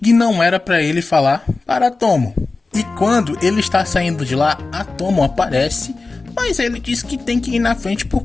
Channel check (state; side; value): quieter; right; 3.7 dB